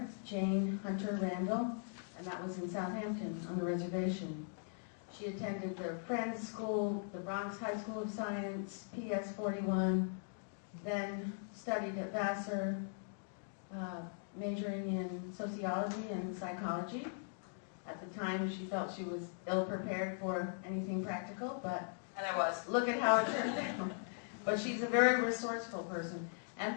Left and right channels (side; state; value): right; silent; digital silence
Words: Jane Hunter Randall, and that was in Southampton on the reservation. She attended the Friends School, the Bronx High School of Science, PS 41, then studied at Vassar, majoring in sociology and psychology. At the time, she felt she was ill-prepared for anything practical, and I was. Look at how it turned out. But she's a very resourceful person.